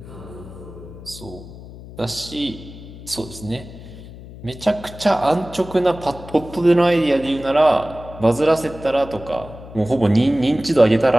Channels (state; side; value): noise; left; hum, 16 dB below the sound